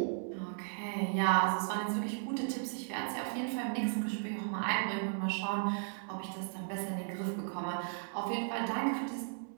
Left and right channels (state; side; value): silent; left; digital silence